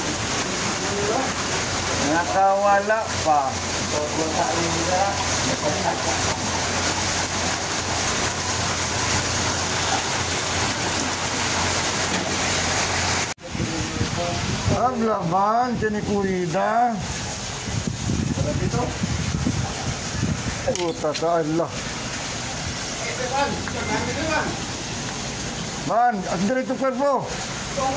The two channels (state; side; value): identical; both; correlation 1.00